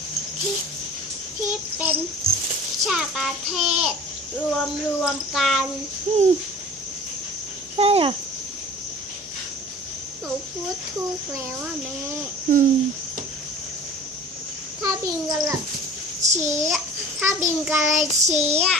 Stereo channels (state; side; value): normal; both; correlation 0.43